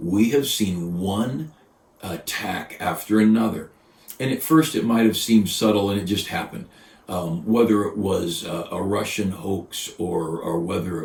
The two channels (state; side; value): identical; both; correlation 1.00